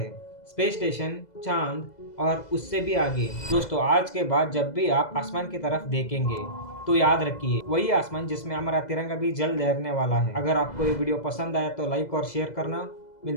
स्पेस स्टेशन, चांद और उससे भी आगे। दोस्तों, आज के बाद जब भी आप आसमान की तरफ देखेंगे तो याद रखिए, वही आसमान जिसमें हमारा तिरंगा भी जल्द लहरने वाला है। अगर आपको ये वीडियो पसंद आया तो लाइक और शेयर करना।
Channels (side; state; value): right; late; 2.0 ms